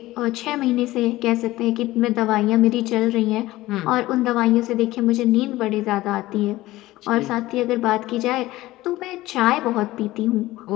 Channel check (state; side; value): quieter; right; 17.4 dB